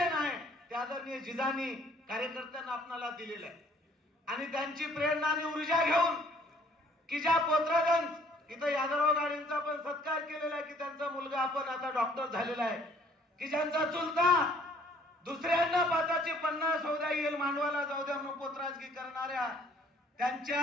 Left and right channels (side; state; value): both; normal; correlation 0.59